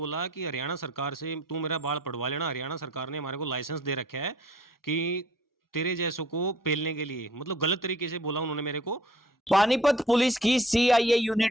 कि हरियाणा सरकार से तू मेरा बाल पड़वा लेना। हरियाणा सरकार ने हमारे को लाइसेंस दे रखा है कि तेरे जैसों को पेलने के लिए, मतलब गलत तरीके से बोला उन्होंने मेरे को। पानीपत पुलिस की सीआईए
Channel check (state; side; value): normal; both; correlation 0.56